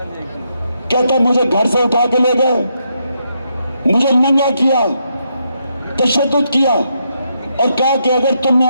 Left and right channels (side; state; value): both; inverted; correlation -0.79